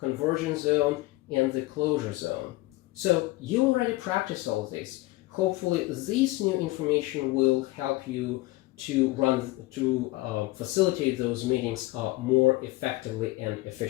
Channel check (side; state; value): right; quieter; 20.0 dB